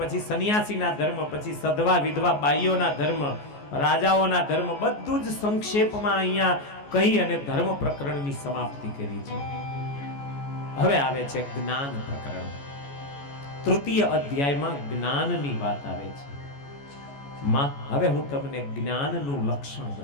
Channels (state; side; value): late; right; 14 ms